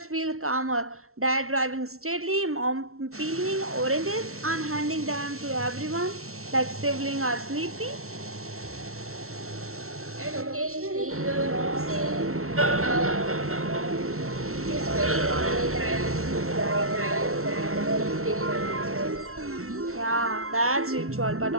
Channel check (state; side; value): late; left; 0.63 ms